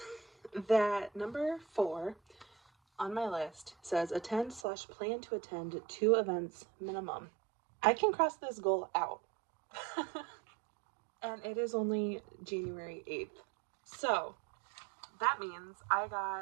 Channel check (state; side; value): drops out; left; at 4.7 s